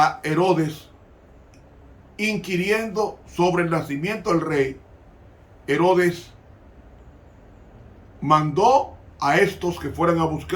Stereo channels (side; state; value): both; identical; correlation 1.00